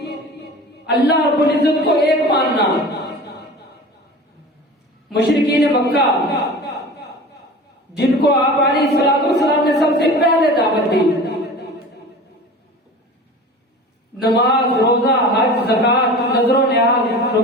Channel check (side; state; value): both; normal; correlation 0.37